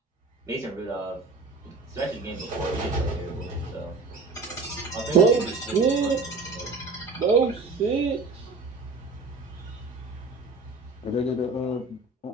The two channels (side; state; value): left; quieter; 3.7 dB